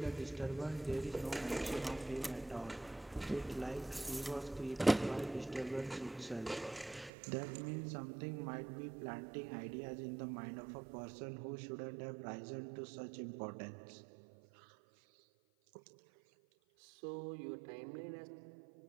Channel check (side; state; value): left; drops out; at 7.1 s